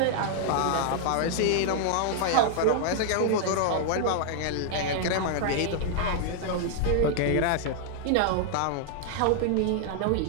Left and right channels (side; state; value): both; different; correlation 0.00